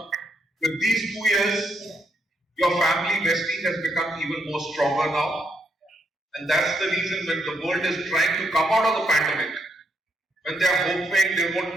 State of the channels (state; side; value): normal; both; correlation 0.77